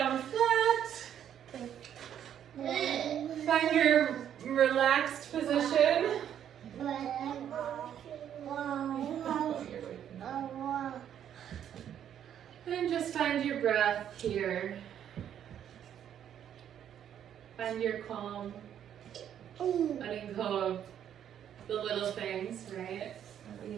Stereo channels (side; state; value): left; quieter; 9.7 dB